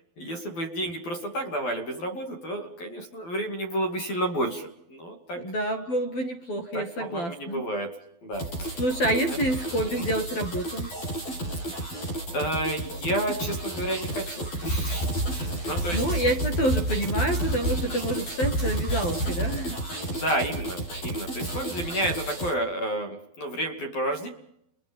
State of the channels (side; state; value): right; late; 12 ms